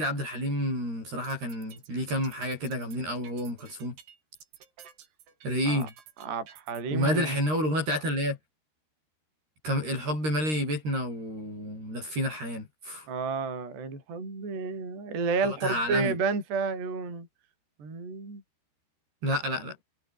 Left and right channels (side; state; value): left; late; 13 ms